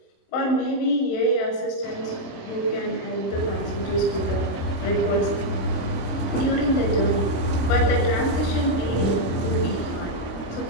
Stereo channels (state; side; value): late; right; 26 ms